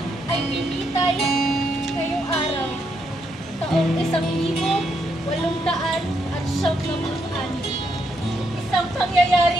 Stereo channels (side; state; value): both; normal; correlation 0.77